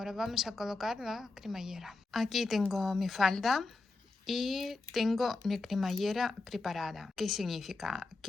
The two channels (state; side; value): quieter; right; 3.5 dB